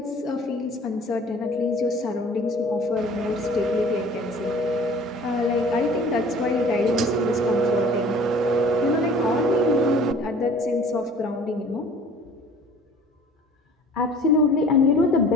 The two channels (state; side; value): normal; both; correlation 0.48